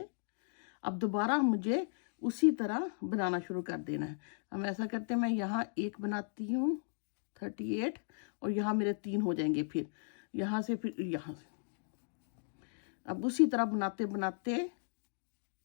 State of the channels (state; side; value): silent; right; digital silence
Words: अब दोबारा मुझे उसी तरह बनाना शुरू कर देना है। हम ऐसा करते हैं, मैं यहाँ 1 बनाती हूँ 38 और यहाँ मेरे 3 हो जाएंगे। फिर यहाँ से फिर यहाँ से अब उसी तरह बनाते बनाते